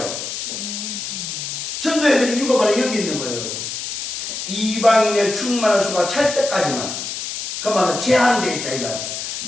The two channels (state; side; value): noise; left; hiss, 6 dB below the sound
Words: 전도해야 될 이유가 바로 여기 있는 거예요. 이방인의 충만한 수가 찰 때까지만. 그 말은 제한되어 있다 이